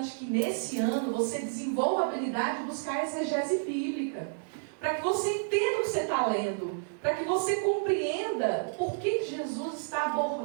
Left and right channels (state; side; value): silent; left; 58 dB below the other